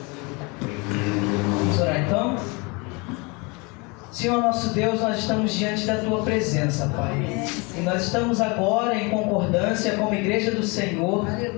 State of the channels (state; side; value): quieter; right; 28.6 dB